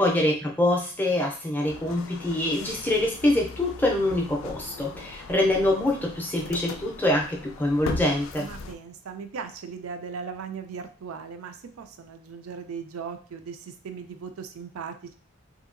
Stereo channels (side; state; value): both; normal; correlation 0.65